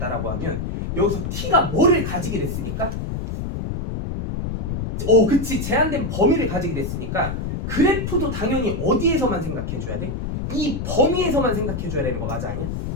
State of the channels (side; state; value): left; noise; rumble, 4 dB below the sound